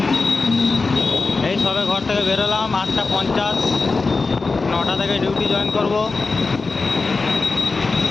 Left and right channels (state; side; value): quieter; right; 4.0 dB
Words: এই সবে ঘর থেকে বেরোলাম 8:50, 9টা থেকে ডিউটি জয়েন করব।